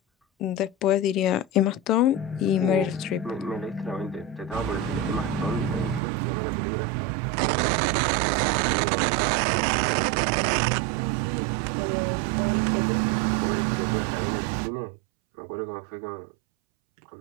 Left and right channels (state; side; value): drops out; left; at 6.0 s